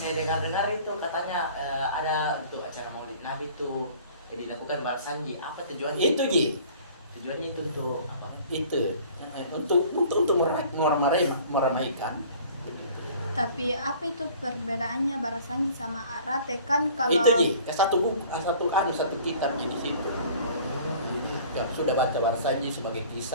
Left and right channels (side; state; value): both; inverted; correlation -0.49